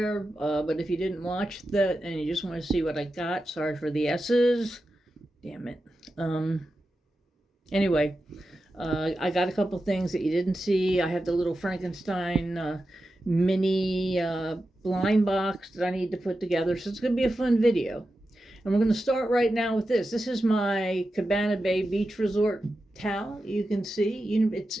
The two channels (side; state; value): both; normal; correlation 0.91